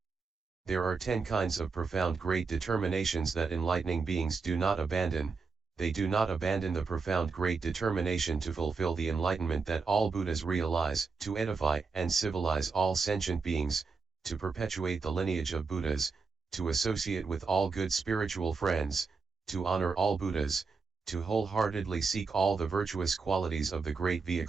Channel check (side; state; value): left; quieter; 4.7 dB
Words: There are 10 kinds of profound great determinations that enlightening beings do not abandon. They do not abandon the profound great determination to fulfill the enlightenment that all Buddhas realize, to edify and civilize all sentient beings, to perpetuate the lineage of Buddhas, to associate with all good spiritual friends, to honor all Buddhas, to wholeheartedly seek all the virtuous qualities of the great